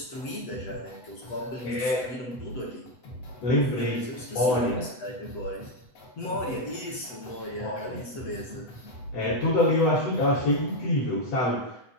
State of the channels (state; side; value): late; right; 7.9 ms